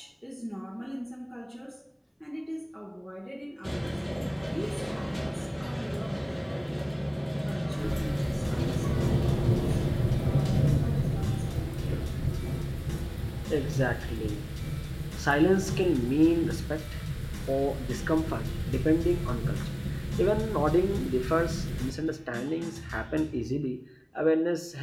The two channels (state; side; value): identical; both; correlation 1.00